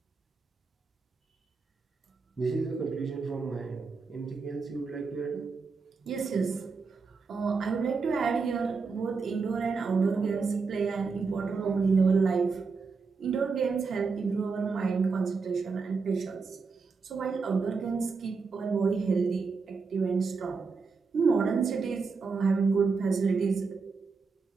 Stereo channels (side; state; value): left; quieter; 4.8 dB